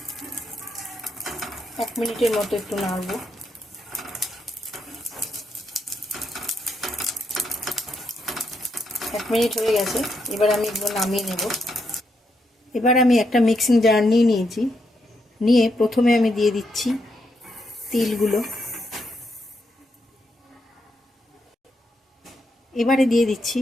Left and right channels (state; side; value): normal; both; correlation 0.80